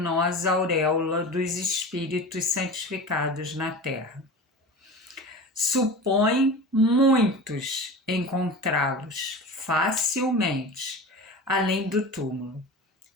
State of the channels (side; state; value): both; normal; correlation 0.32